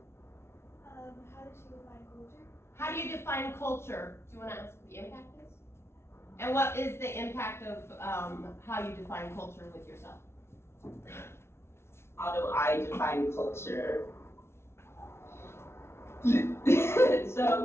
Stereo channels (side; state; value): right; late; 0.12 ms